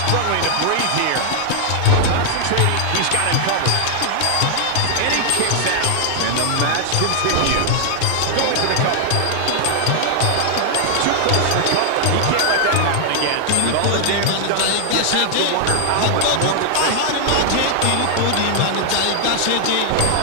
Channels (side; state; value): both; different; correlation 0.00